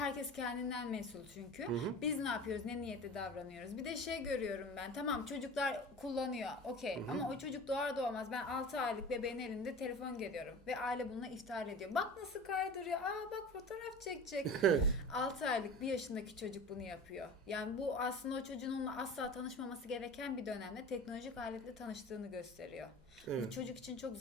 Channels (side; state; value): both; normal; correlation 0.36